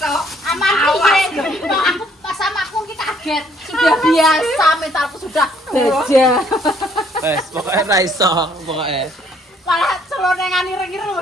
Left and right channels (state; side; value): normal; both; correlation 0.65